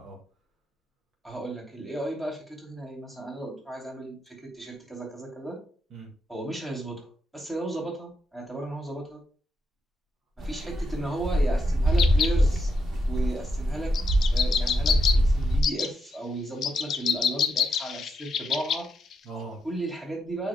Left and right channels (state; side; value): normal; both; correlation 0.82